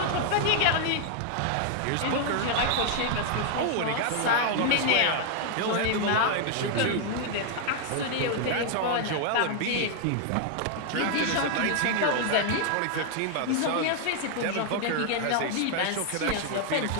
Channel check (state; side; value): different; both; correlation 0.00